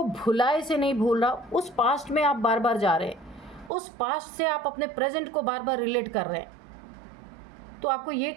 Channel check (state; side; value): drops out; left; at 3.7 s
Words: भुलाए से नहीं भूल रहा, उस पास्ट में आप बार बार जा रहे हैं। उस पास्ट से आप अपने प्रेजेंट को बार बार रिलेट कर रहे हैं। तो आपको ये